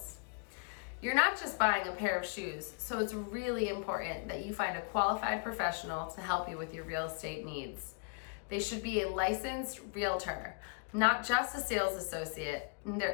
You're not just buying a pair of shoes, so it's really important that you find a qualified professional to help you with your real estate needs. They should be a licensed realtor, not just a sales associate. There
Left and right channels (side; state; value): right; quieter; 36.4 dB